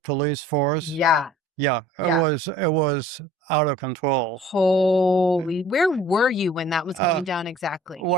force. Yeah. Yeah, Yeah. it was out of control. Holy, where were you when that was going down exactly? You were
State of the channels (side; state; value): both; normal; correlation 0.51